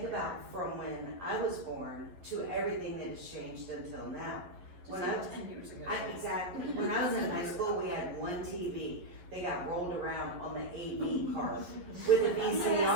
about from when I was born to everything that has changed until now. When I was 10 years ago. Exactly. When I was in high school, we had one TV. They got rolled around on the AV card with a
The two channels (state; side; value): late; left; 11 ms